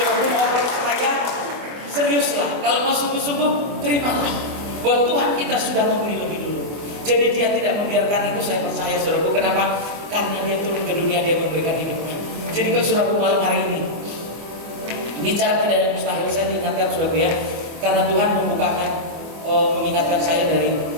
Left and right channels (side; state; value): left; late; 24 ms